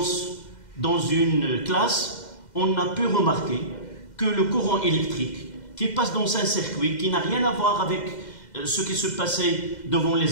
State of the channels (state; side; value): late; right; 2.1 ms